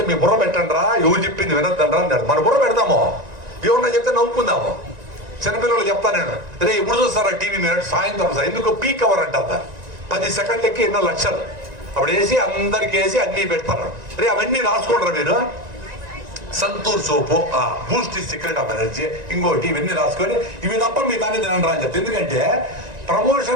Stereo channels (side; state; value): left; late; 1.9 ms